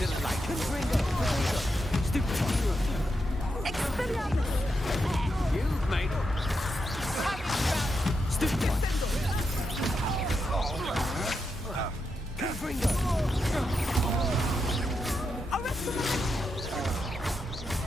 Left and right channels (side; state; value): both; normal; correlation 0.85